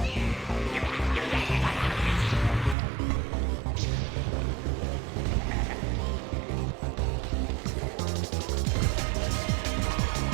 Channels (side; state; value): left; drops out; at 2.8 s